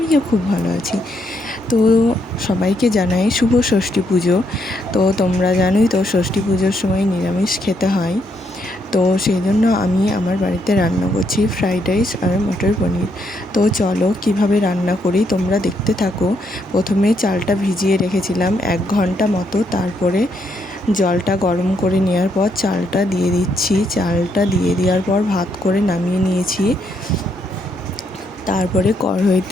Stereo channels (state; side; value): normal; both; correlation 0.76